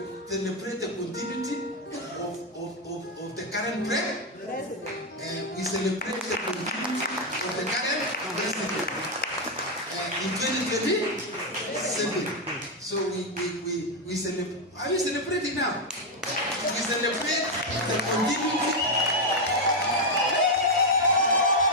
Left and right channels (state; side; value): normal; both; correlation 0.03